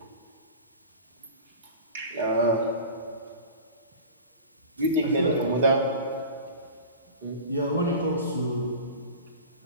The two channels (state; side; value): inverted; both; correlation -0.35